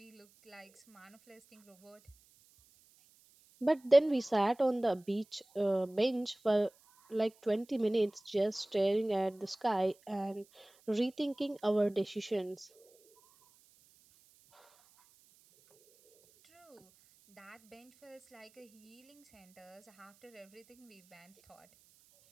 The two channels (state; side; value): noise; right; hiss, 30 dB below the sound